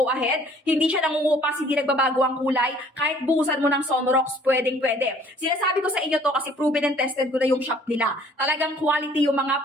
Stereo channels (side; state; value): both; normal; correlation 0.56